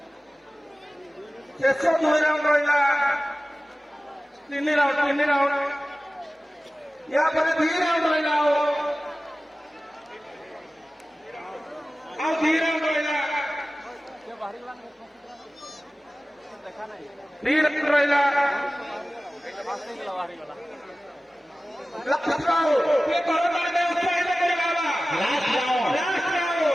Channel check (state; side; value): normal; both; correlation 0.96